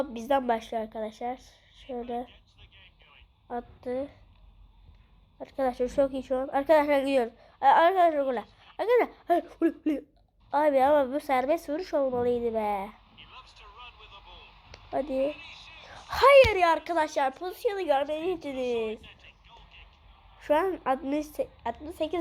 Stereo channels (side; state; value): both; identical; correlation 1.00